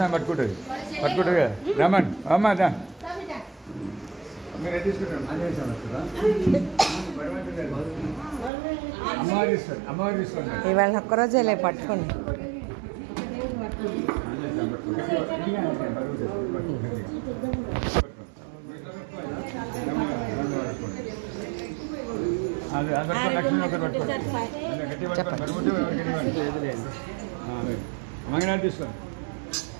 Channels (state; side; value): drops out; left; at 8.5 s